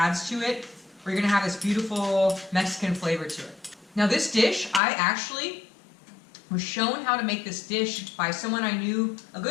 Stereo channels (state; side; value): drops out; right; at 4.8 s